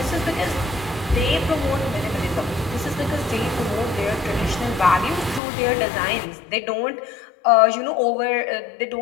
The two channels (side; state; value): right; drops out; at 5.4 s